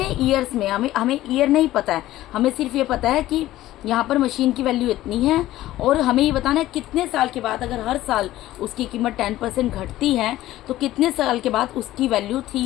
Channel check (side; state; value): right; quieter; 15.2 dB